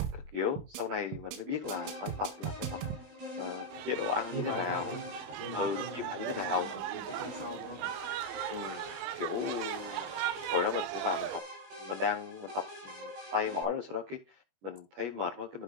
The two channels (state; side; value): late; left; 21 ms